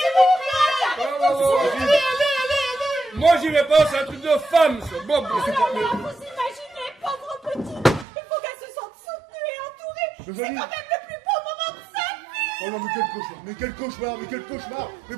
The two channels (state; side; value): drops out; left; at 8.1 s